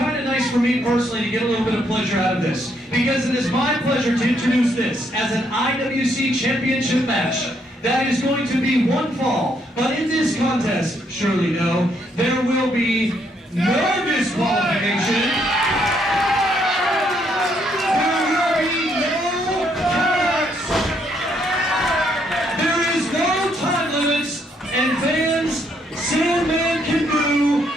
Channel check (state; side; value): normal; both; correlation 0.73